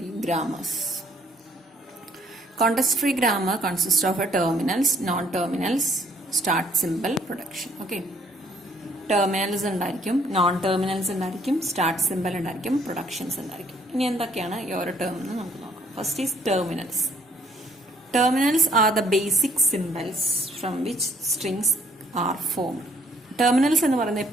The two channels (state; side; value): normal; both; correlation 0.64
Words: grammars. Context-free grammar consists of a terminals, non-terminals, start symbol, production. Okay. Terminals ഉണ്ടായിരിക്കും, non-terminals ഉണ്ടായിരിക്കും, start symbol ഉണ്ടായിരിക്കും, productions ഉണ്ടായിരിക്കും. ഇനി എന്തൊക്കെയാണ് ഈ ഓരോ ടേം എന്ന് നമുക്ക് നോക്കാം. First is terminals. Terminals are the basic symbols from which strings are formed. Terminals എന്ന് പറയുന്നത്